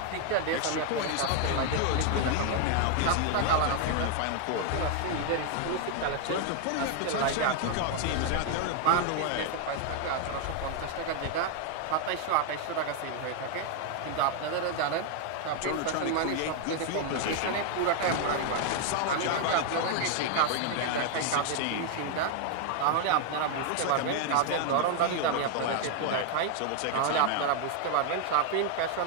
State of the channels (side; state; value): both; different; correlation 0.00